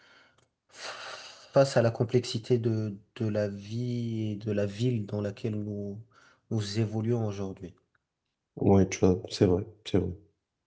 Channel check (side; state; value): both; identical; correlation 1.00